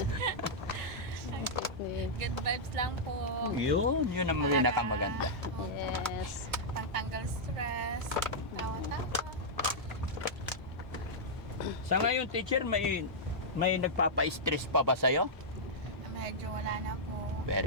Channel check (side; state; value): both; normal; correlation -0.09